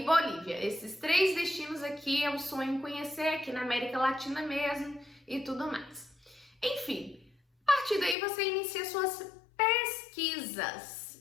Bolívia. Esses 3 destinos aqui eu sonho em conhecer aqui na América Latina mesmo e tudo mais. Enfim, a partir daí você inicia suas pesquisas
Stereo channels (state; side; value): drops out; right; at 8.2 s